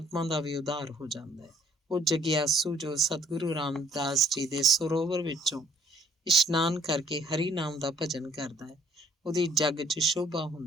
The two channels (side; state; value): both; normal; correlation 0.61